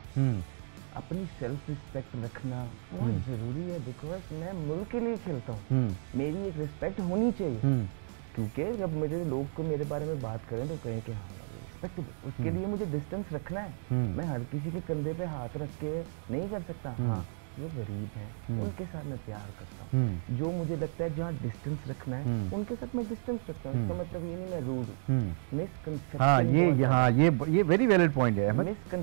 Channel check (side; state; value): left; silent; digital silence